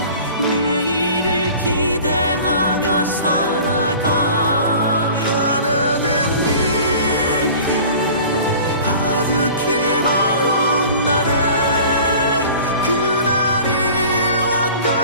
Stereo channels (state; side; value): inverted; both; correlation -0.43